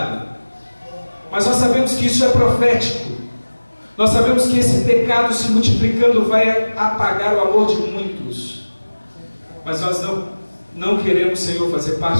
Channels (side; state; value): both; inverted; correlation -1.00